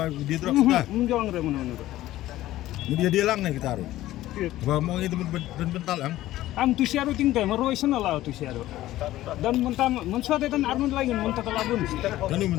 di drop ta Menjauh dari mana. dia lang na kita ro ba mong gi temen bental ang Am tu siaru tinggal merui sana lah tu siaru. Dan mensuat dan arun lagi mentah telabun. kanu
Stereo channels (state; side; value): quieter; right; 15.2 dB